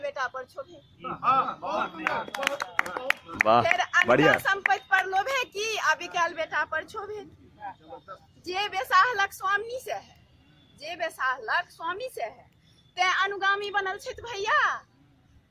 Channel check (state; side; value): identical; both; correlation 1.00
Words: पर छोभे। फिर अनका संपत्ति पर लोभे की, अभी काल बेटा पर छोभे की। जे बेसाहलक स्वामी से है, जे बेसाहलक स्वामी से है। ते अनुगामी बनल छथि भैया,